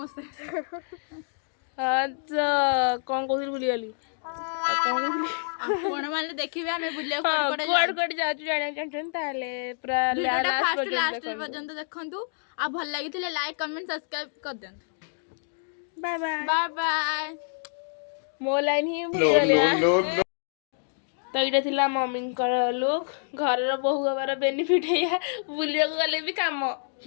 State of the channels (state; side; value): silent; right; digital silence